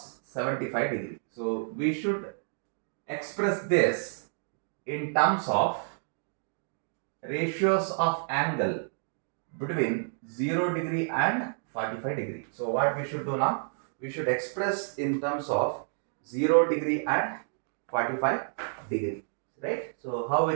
75 degree. So we should express this in terms of ratios of angle between 0 degree and 45 degree. So what we should do now? We should express in terms of 0 degree and 45 degree, right? So how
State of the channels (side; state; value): left; silent; digital silence